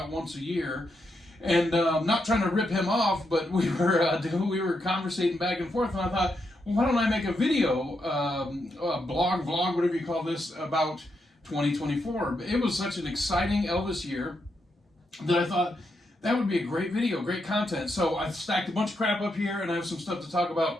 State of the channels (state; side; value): normal; both; correlation 0.82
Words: once a year. And I'm not trying to rip him off, but we were conversating back and forth, and I thought, well, why don't I make a video, a blog, vlog, whatever you call this, about 2024. It was such an exciting Elvis year that I thought that would be a great video, great content. So I've stacked a bunch of crap up here, and I have some stuff to talk